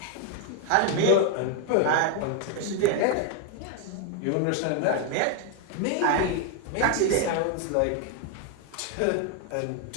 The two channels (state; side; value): different; both; correlation 0.01